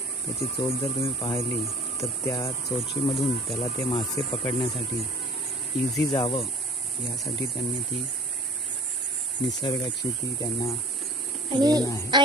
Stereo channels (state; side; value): normal; both; correlation 0.46